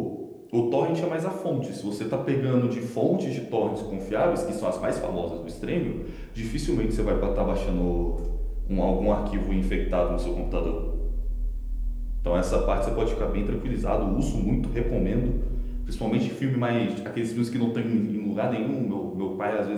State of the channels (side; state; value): both; identical; correlation 1.00